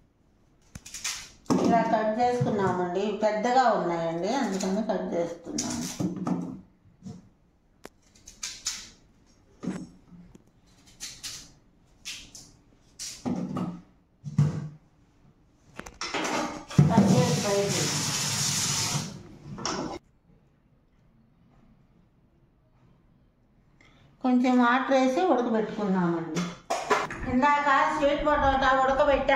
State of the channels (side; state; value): both; identical; correlation 1.00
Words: ఇలా కట్ చేసుకున్నామండి. పెద్దగా ఉన్నాయండి, అందుకని కట్ చేస్తున్నాము. కొంచెం వాటర్ వేసి ఉడకబెట్టుకున్నామండి. ఇందాక స్వీట్ పొటాటో